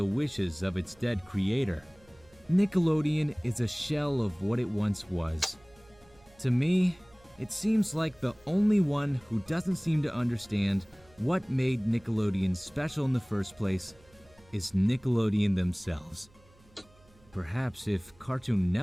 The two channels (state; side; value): noise; right; hum, 29 dB below the sound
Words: wishes of its dead creator. Nickelodeon is a shell of what it once was. To me, it seems like the only one who doesn't seem to understand what made Nickelodeon special in the first place is Nickelodeon themselves. Perhaps if Cartoon